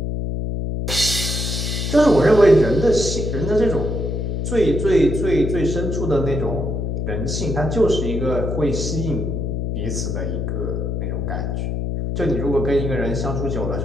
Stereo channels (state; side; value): noise; left; hum, 2 dB below the sound